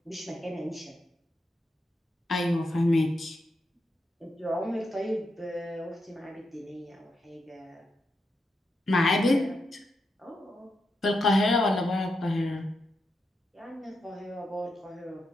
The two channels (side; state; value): both; normal; correlation 0.84